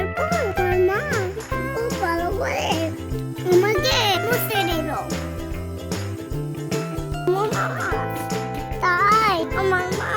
পর আমার মা খুব ভালো করে আমাকে মুছে দিল। তাই আমার মা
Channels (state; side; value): identical; both; correlation 1.00